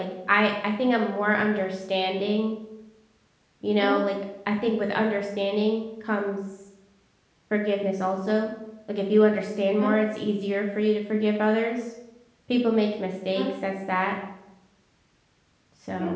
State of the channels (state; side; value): identical; both; correlation 1.00